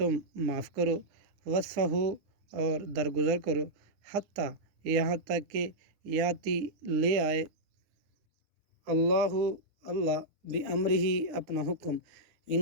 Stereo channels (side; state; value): left; late; 9.5 ms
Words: معاف کرو وصفحو اور درگزر کرو حتیٰ یہاں تک کہ یاتی لے آئے اللہ بامرہ اپنا حکم